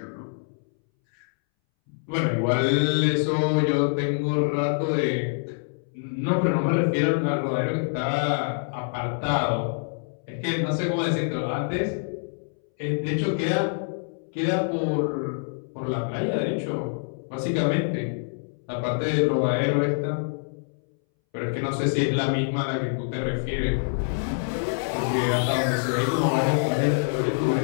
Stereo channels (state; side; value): silent; right; 61 dB below the other